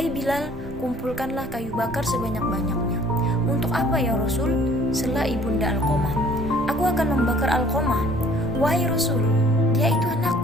Bilal, kumpulkanlah kayu bakar sebanyak-banyaknya. Untuk apa ya Rasul? Sela ibunda Alqamah. Aku akan membakar Alqamah. Wahai Rasul, dia itu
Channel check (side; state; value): both; normal; correlation 0.56